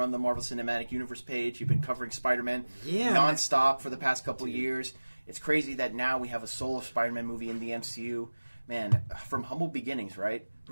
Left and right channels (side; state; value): both; inverted; correlation -1.00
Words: the Marvel Cinematic Universe page. You've been covering Spider-Man nonstop for the past couple of years. It's crazy that now we have a solo Spider-Man movie in the MCU. Man, from humble beginnings, right?